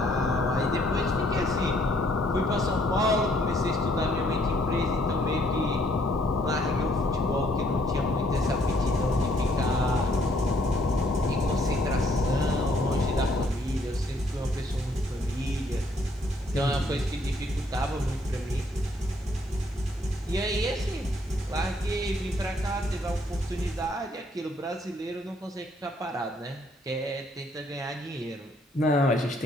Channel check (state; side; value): normal; both; correlation 0.67